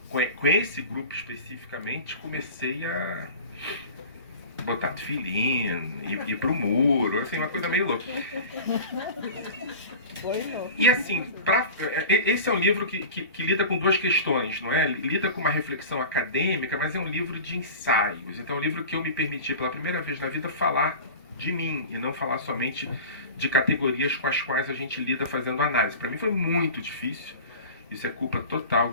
com esse grupo especificamente, comecei a botar tefilim, ir pro muro, assim, uma coisa meio louca. E assim, esse é um livro que lida com duas questões, não é? Lida com uma reflexão acadêmica, mas é um livro de ensaios. Então é um livro que eu me permiti pela primeira vez na vida falar de mim, e não falar somente de categorias com as quais a gente lida fazendo análise. Para mim foi muito difícil, isso é culpa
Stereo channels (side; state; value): both; inverted; correlation -0.35